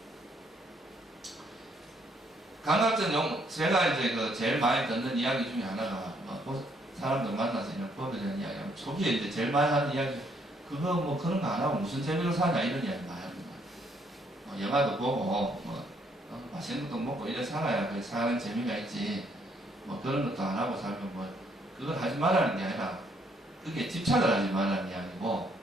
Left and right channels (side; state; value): both; normal; correlation 0.69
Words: 제가 이제 제일 많이 듣는 이야기 중에 하나가 사람들 만나서 이런 법에 대한 이야기하면 초기에 이제 제일 많이 하는 이야기 그거 뭐 그런 거 안 하고 무슨 재미로 사냐 이런 이야기 많이 합니다. 뭐 영화도 보고 뭐 맛있는 것도 먹고 이래 살아야 그 사는 재미가 있지. 뭐 그런 것도 안 하고 살면 뭐 그걸 하지 말라는 게 아니라 그게 집착을 하지 말라는 이야기고,